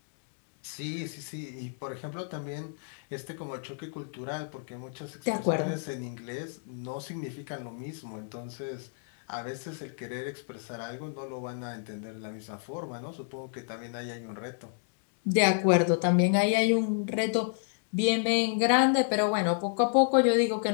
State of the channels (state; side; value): silent; right; 57 dB below the other